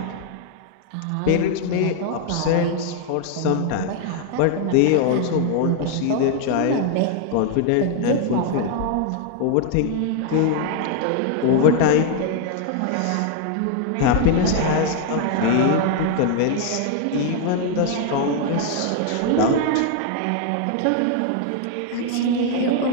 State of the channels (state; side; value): different; both; correlation 0.00